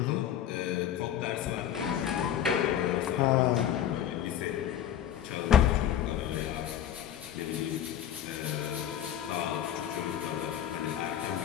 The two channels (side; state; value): right; quieter; 10.3 dB